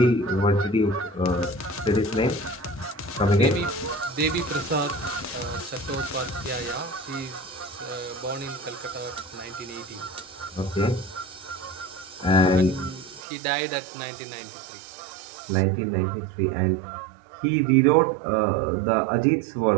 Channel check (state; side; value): drops out; left; at 13.2 s